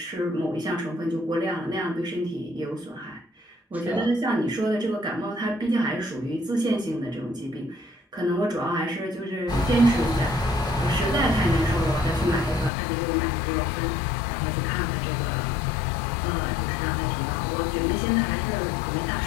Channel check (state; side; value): drops out; right; at 12.7 s